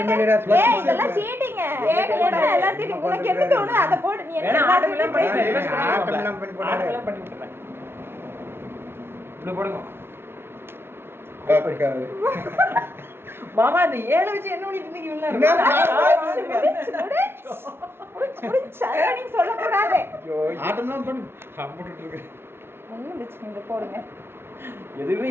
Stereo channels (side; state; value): left; late; 0.11 ms